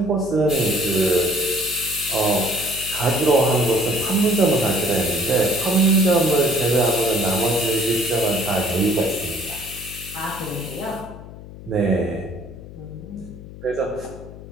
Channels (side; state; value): left; noise; hum, 15 dB below the sound